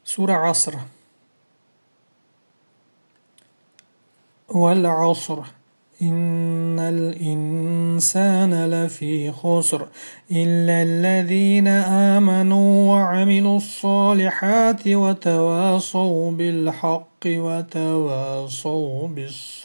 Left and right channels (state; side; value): inverted; both; correlation -1.00